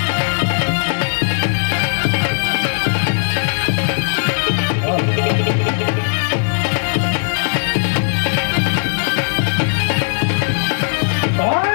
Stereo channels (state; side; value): silent; right; 66 dB below the other